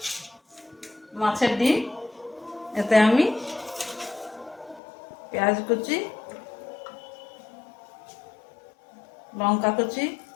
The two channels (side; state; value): right; drops out; at 4.8 s